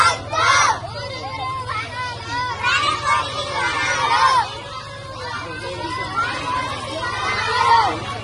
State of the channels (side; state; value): both; identical; correlation 1.00